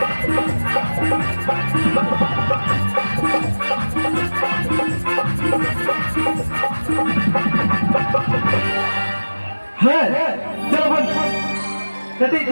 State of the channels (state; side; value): inverted; both; correlation -1.00